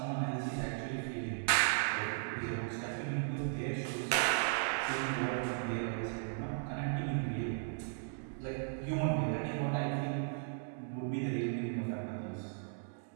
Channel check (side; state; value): left; silent; digital silence